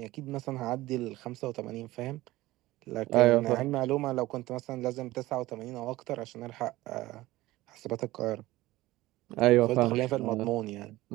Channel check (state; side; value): quieter; left; 17.8 dB